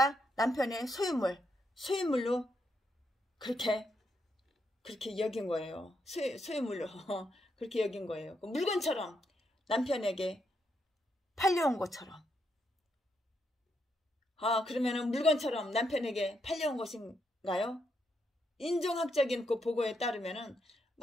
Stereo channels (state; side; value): normal; both; correlation 0.79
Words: 남편의 소유물로 그렇게 여긴 거예요. 소유물로 그렇게 여긴 거예요. 물건처럼 남편에게 팔려온 것처럼. 그러면은 물건처럼 남편에게 팔려온 것인가요? 인종학적인 그 보고에 따르면은